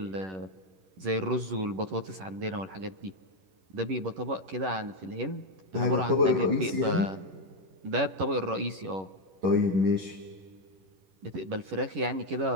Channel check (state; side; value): late; left; 11 ms